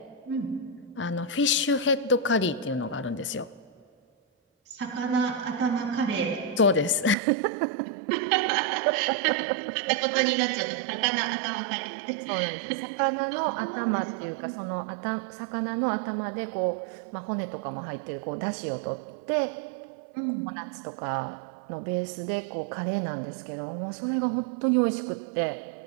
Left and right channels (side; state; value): left; drops out; at 7.2 s